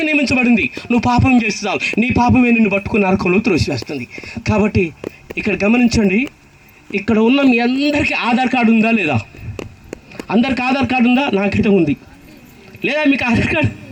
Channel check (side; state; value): both; identical; correlation 1.00